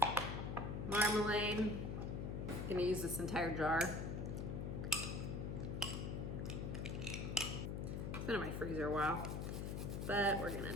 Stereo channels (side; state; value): left; noise; hum, 3 dB below the sound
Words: marmalade. I'm going to use this entire jar. It's been in my freezer a while. But we're gonna